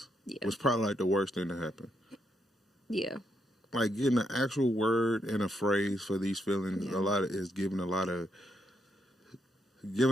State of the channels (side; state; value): both; normal; correlation 0.78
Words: was probably like the worst thing to happen. Yeah. Like getting an actual word and a phrase for these feelings, Yeah. a lot of is giving a lot of